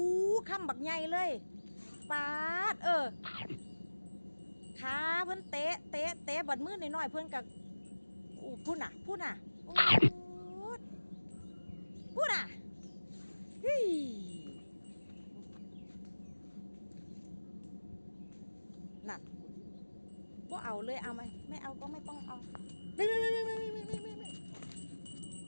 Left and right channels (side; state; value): both; inverted; correlation -1.00